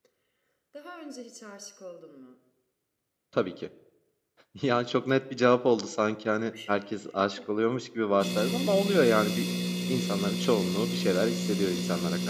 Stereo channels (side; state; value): both; identical; correlation 1.00